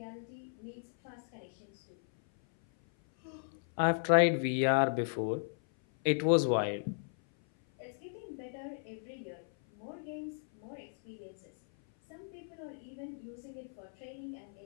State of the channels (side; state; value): right; silent; 54 dB below the other